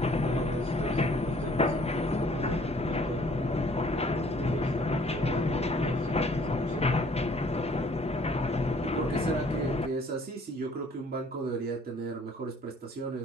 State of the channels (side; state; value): both; normal; correlation 0.58